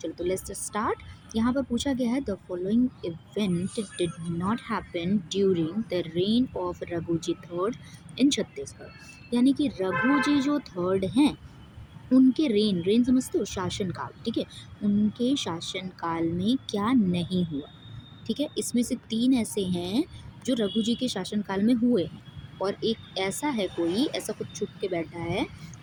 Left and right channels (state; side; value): identical; both; correlation 1.00